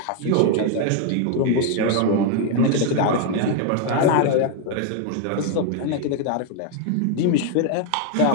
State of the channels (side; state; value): both; different; correlation 0.01